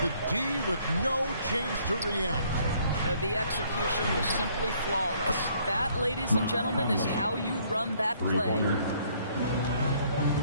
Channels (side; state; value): both; inverted; correlation -0.64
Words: The D with no chance to react. The execution was simply flawless. That, ladies and gentlemen, is how you run that play.